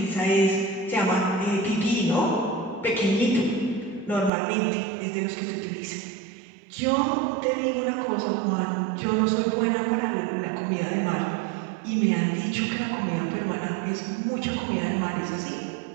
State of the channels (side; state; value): left; drops out; at 4.3 s